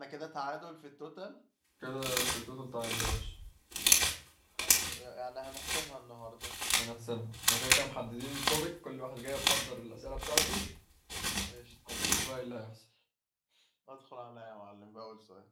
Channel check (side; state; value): both; identical; correlation 1.00